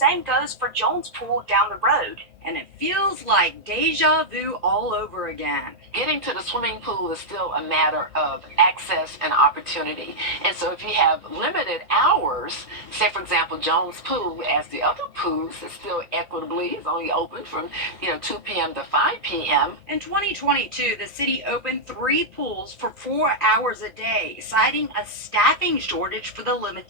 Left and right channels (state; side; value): late; left; 1.9 ms